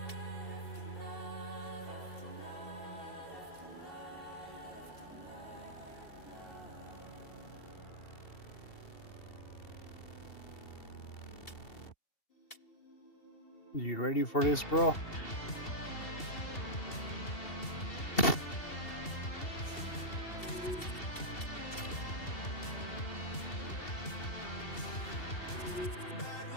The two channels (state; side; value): late; right; 2.7 ms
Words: You ready for this, bro?